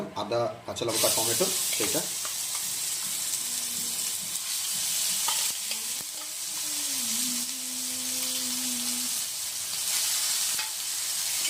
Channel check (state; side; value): identical; both; correlation 1.00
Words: আদা, কাঁচা লঙ্কা, টমেটো, সেটা।